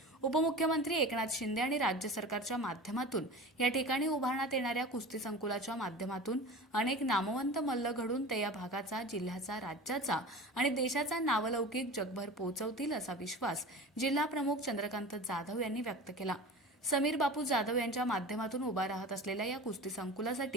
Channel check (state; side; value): normal; both; correlation 0.34